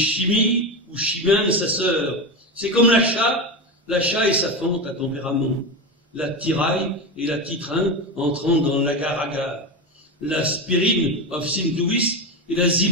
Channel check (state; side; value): normal; both; correlation 0.17